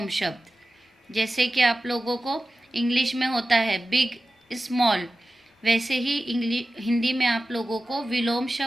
शब्द। जैसे कि आप लोगों को इंग्लिश में होता है बिग, स्मॉल, वैसे ही हिंदी में आप लोगों को विलोम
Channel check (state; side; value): normal; both; correlation 0.95